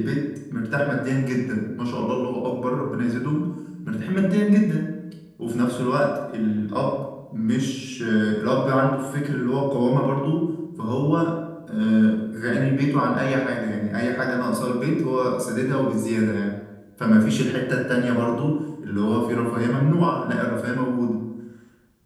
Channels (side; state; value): both; identical; correlation 1.00